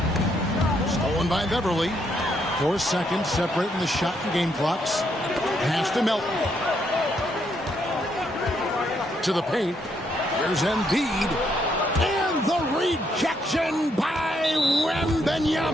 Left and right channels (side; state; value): both; normal; correlation 0.75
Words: Stolen by Beverly. 4 seconds separating the shot and game clocks. Pass to Melton. To the paint. Here's Embiid. And the rejection by